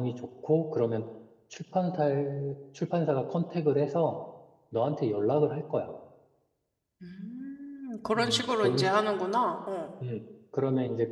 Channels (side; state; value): both; identical; correlation 1.00